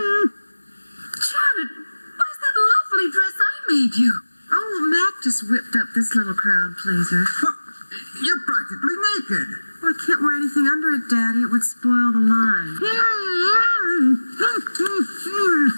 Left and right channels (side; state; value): both; inverted; correlation -1.00